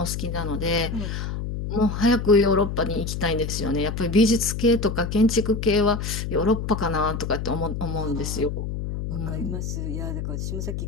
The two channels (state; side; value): noise; left; hum, 4 dB below the sound